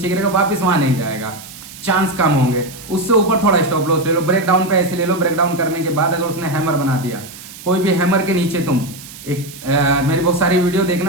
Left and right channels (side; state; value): right; noise; hiss, 16 dB below the sound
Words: गिरेगा, वापस वहां नहीं जाएगा, चांस कम होंगे। उससे ऊपर थोड़ा स्टॉप लॉस ले लो, ब्रेकडाउन पे ऐसे ले लो। ब्रेकडाउन करने के बाद अगर उसने हैमर बना दिया, कोई भी हैमर के नीचे तुम मेरी बहुत सारी वीडियो